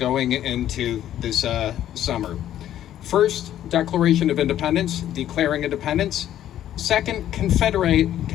into this summer. First, Declaration of Independence, declaring independence. Second,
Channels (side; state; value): right; quieter; 11.7 dB